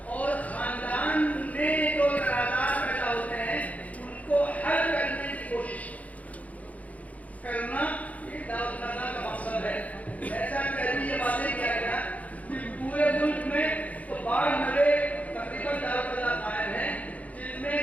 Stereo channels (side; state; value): right; late; 0.070 ms